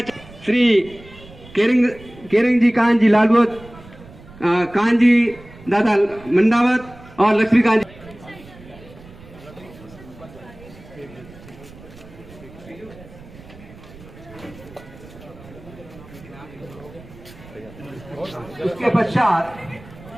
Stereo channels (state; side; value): noise; right; rumble, 20 dB below the sound